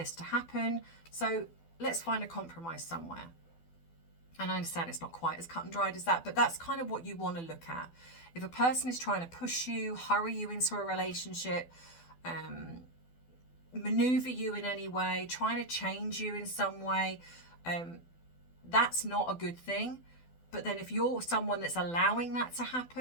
to happen. So let's find a compromise somewhere. And I understand it's not quite as cut and dried as that, but that's kind of what you want to look at. If a person is trying to push you, hurry you into a relationship, maneuver you in any way, trying to change you in some way, that's not a good thing. But then if you're someone that's allowing that to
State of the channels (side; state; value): right; late; 12 ms